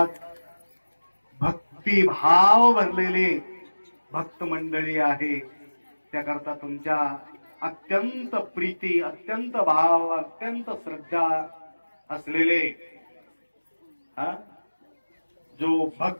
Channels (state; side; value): inverted; both; correlation -1.00